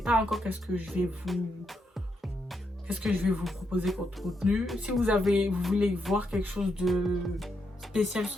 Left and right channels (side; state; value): both; normal; correlation 0.81